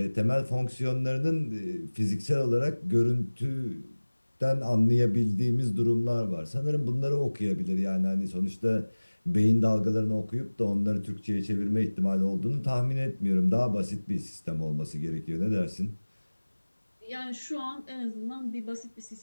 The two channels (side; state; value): both; inverted; correlation -1.00